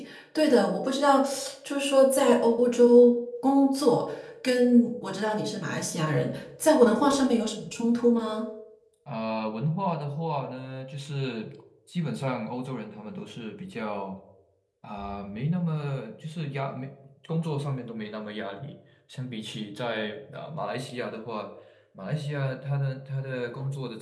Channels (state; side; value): identical; both; correlation 1.00